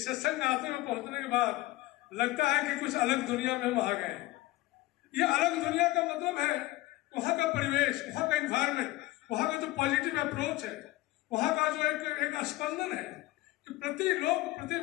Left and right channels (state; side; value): quieter; right; 18.3 dB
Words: सत्संग आते में पहुंचने के बाद लगता है कि कुछ अलग दुनिया में हम आ गए। ये अलग दुनिया का मतलब है वहाँ का परिवेश, वहाँ का इन्वायरमेंट, वहाँ का जो पॉजिटिव अप्रोच है, वहाँ का जो एक स्पंदन है कि प्रति